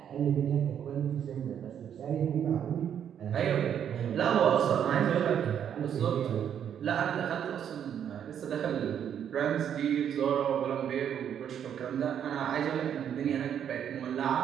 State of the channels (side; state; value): left; quieter; 9.0 dB